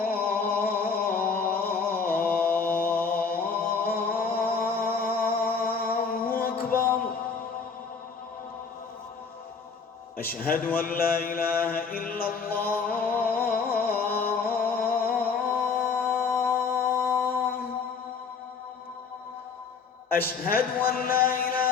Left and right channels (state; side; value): quieter; right; 5.3 dB